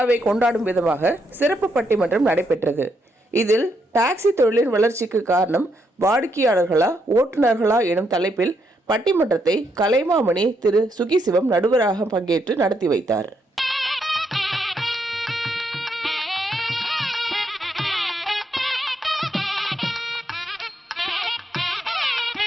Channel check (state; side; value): normal; both; correlation 0.78